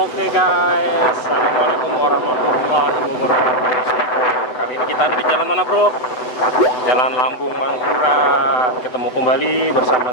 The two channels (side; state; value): right; late; 7.9 ms